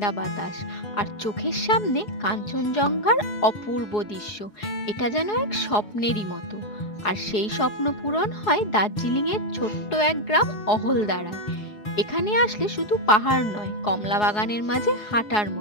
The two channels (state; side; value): late; right; 4.8 ms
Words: বাতাস আর চোখের সামনে কাঞ্চনজঙ্ঘার অপূর্ব দৃশ্য। এটা যেন এক স্বপ্নেরই মতো। আর সেই স্বপ্ন পূরণ হয় দার্জিলিং এর ছোট্ট এক গ্রাম অহলদারা। এখানে আসলে শুধু পাহাড় নয়, কমলা বাগানের মাঝে হাঁটার